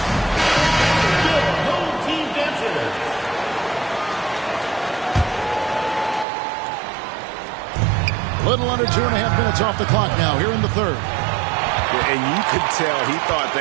Little under 2.5 minutes off the clock now here in the third. And you could tell he thought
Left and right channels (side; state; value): left; drops out; at 6.2 s